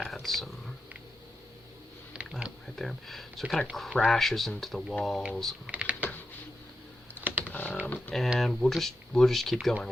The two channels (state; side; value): normal; both; correlation 0.88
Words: some, that right there. So it kind of crashes into the walls. And we'll just keep going